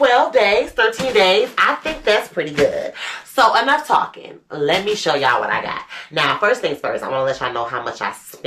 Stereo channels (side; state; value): both; identical; correlation 1.00